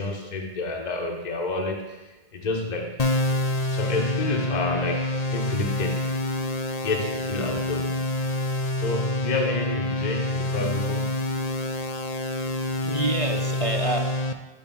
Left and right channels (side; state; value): right; late; 1.8 ms